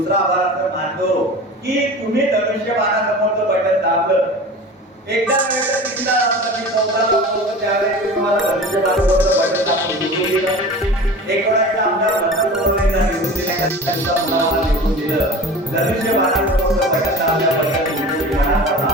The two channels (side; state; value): both; normal; correlation 0.36